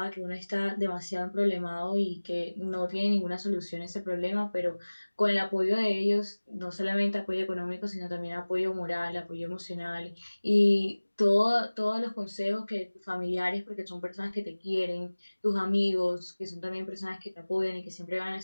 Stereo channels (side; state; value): both; inverted; correlation -1.00